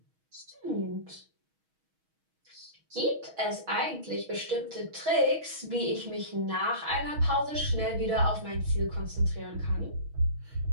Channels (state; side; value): late; left; 6.3 ms